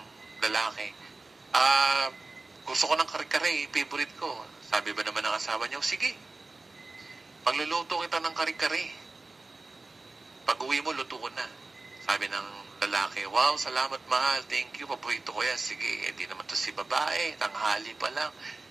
lalaki, gusto ko ng kare-kare, favorite ko. Sabi ba naman ng asawa niya, sige, pagluluto kita ng kare-kare. Pag-uwi mo, luto ko na. Sabi ng lalaki, wow, salamat mahal, thank you, paborito ko yan. Sige, di naman to si babae, tanghali pa lang.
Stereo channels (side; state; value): left; quieter; 3.4 dB